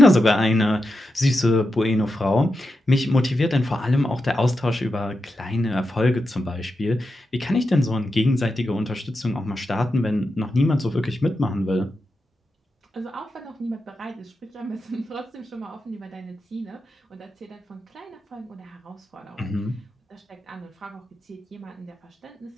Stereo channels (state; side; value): normal; both; correlation 0.88